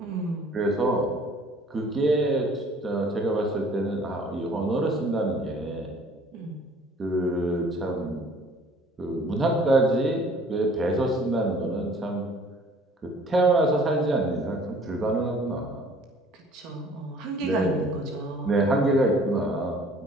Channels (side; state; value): both; normal; correlation 0.54